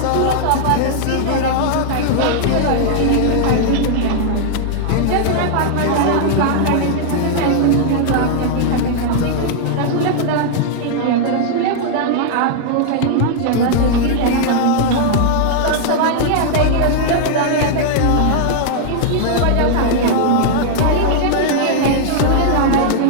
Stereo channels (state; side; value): different; both; correlation -0.01